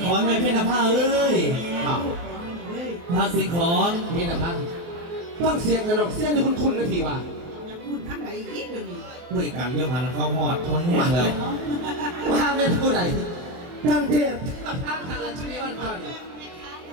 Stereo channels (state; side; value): late; left; 24 ms